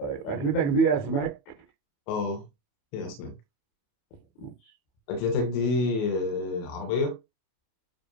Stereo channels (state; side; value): late; right; 28 ms